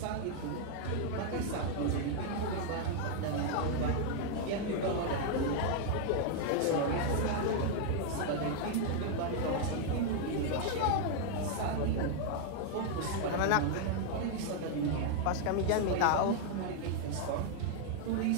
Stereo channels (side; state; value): both; different; correlation 0.00